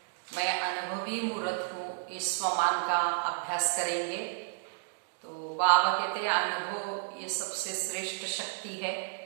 मैं अनुभवी मूर्त हूँ इस स्वमान का अभ्यास करेंगे। तो बाबा कहते हैं अनुभव ये सबसे श्रेष्ठ शक्ति है।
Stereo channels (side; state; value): left; silent; digital silence